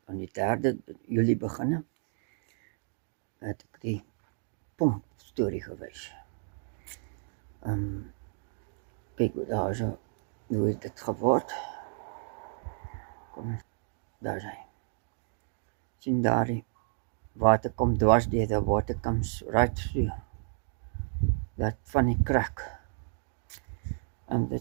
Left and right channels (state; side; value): silent; left; digital silence